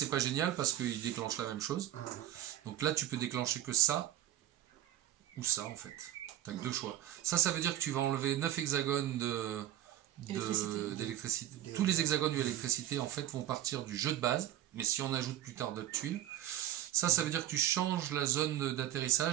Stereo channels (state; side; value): quieter; left; 12.6 dB